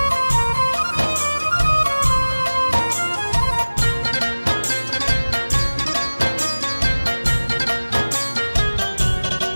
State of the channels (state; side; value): inverted; both; correlation -1.00